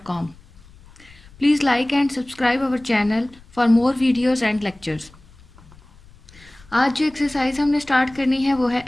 Please like and subscribe our channel for more videos and lectures. आज जो एक्सरसाइज हमने स्टार्ट करनी है वो है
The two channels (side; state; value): left; noise; rumble, 25 dB below the sound